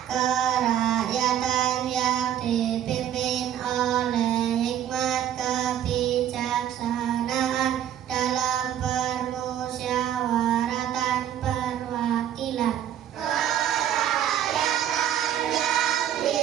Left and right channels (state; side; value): quieter; left; 10.7 dB